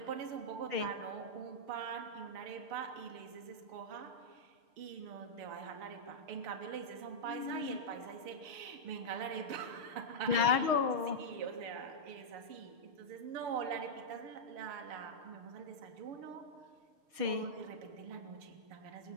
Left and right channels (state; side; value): late; left; 6.3 ms